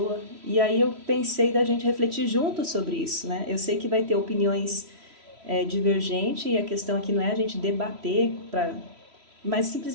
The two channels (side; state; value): left; late; 3.1 ms